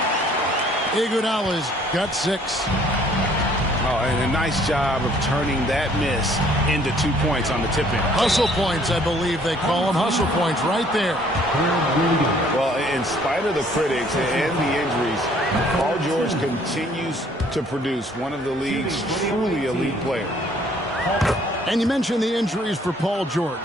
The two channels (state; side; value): normal; both; correlation 0.60